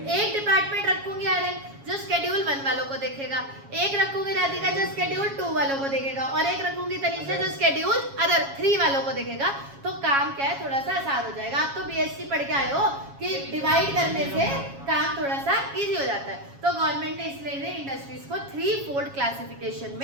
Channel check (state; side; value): late; left; 7.3 ms